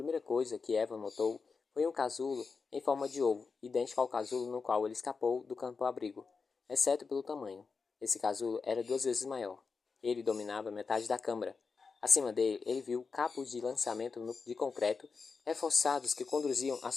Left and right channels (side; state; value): right; quieter; 4.9 dB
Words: coisa que Evan notou foi um casulo em forma de ovo, idêntico ao casulo no qual ele escapou do campo-abrigo, exceto pelo tamanho. Esse casulo era 2 vezes maior. Ele dominava metade da câmara. Acima dele, ele viu cabos de lançamento de concreto reforçados que conduziam à